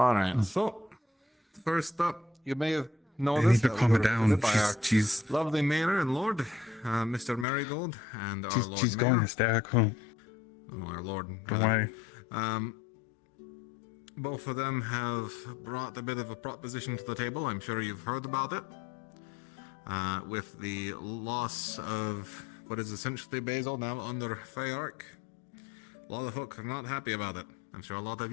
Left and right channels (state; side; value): drops out; right; at 7.5 s